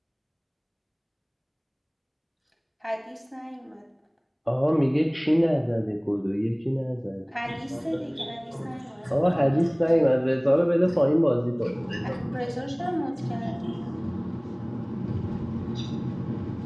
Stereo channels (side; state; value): both; identical; correlation 1.00